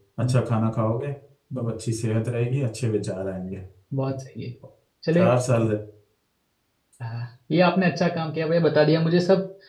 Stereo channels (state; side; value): identical; both; correlation 1.00